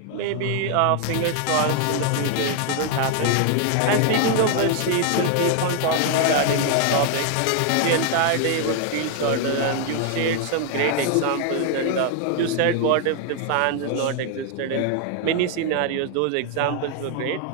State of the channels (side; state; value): both; different; correlation 0.00